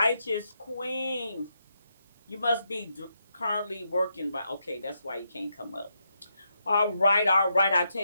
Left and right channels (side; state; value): both; inverted; correlation -0.82